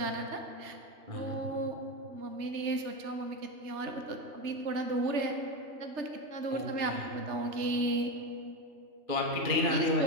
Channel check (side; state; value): left; late; 3.3 ms